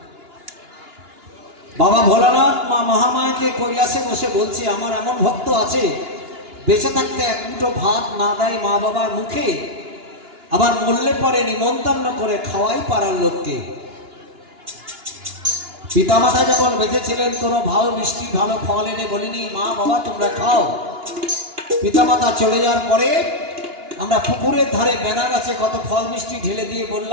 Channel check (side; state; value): left; late; 2.9 ms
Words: বাবা ভোলানাথ মা মহামায়াকে কৈলাসে বসে বলছে, আমার এমন ভক্ত আছে বেঁচে থাকতে এক মুঠো ভাত না দেয় মা বাবার মুখে, আবার মরলে পরে নিমন্ত্রণ করে খাওয়াই পাড়ার লোককে। পিতামাতা যখন বেঁচে ছিলেন কোনো ভালো মিষ্টি ভালো ফল এনে বলিনি মা বাবা তোমরা খাও। পিতামাতা চলে যাওয়ার পরে আমরা পুকুরের ধারে বেনা গাছে কত ফল মিষ্টি ঢেলে দিয়ে